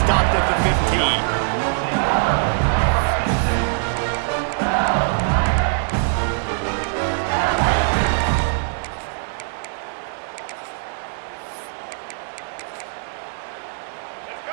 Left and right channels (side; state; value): left; silent; digital silence